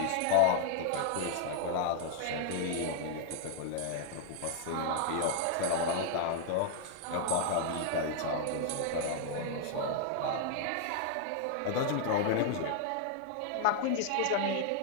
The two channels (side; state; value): both; different; correlation 0.00